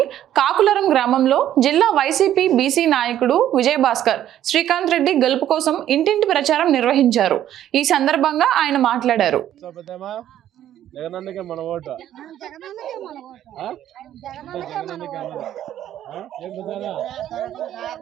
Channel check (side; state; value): left; quieter; 11.6 dB